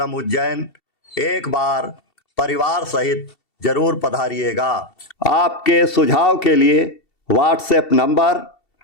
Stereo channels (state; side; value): late; right; 2.7 ms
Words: उज्जैन एक बार परिवार सहित जरूर पधारिएगा। आपके सुझाव के लिए व्हाट्सएप नंबर